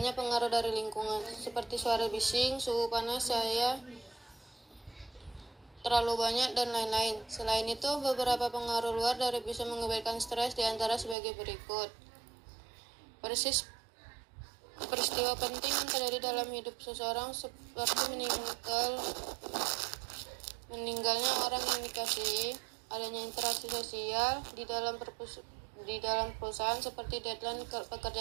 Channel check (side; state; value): left; drops out; at 11.2 s